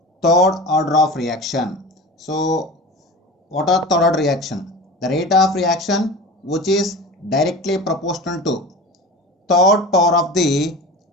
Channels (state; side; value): normal; both; correlation 0.34